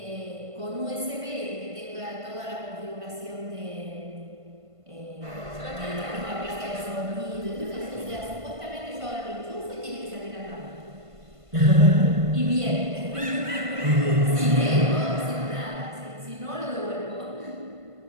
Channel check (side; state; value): left; late; 1.5 ms